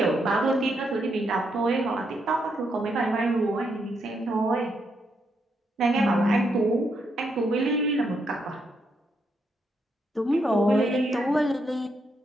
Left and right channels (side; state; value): both; normal; correlation 0.78